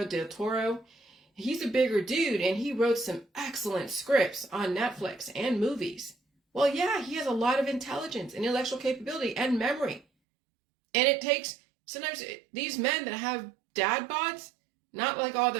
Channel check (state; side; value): drops out; left; at 10.1 s